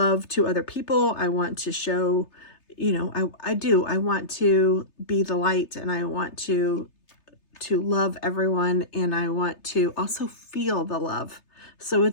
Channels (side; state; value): right; late; 3.3 ms